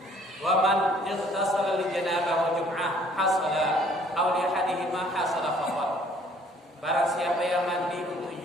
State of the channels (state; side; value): normal; both; correlation 0.58